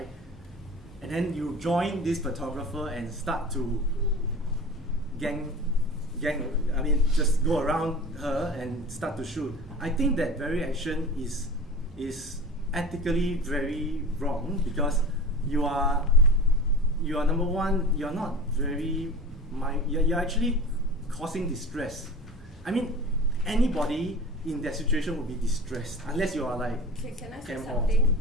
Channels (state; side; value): normal; both; correlation 0.35